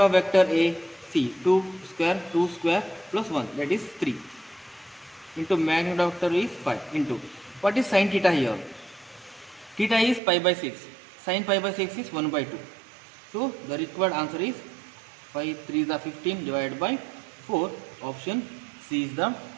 vector A? See 2 square plus 1, that is 3. Into magnitude of vector is 5 into what is sin theta here? Theta is pi by 6. Sin pi by 6 is 1 by 2. So the required answer is 5 3 is 15 divided by 4. Option C is the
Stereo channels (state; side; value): drops out; left; at 10.2 s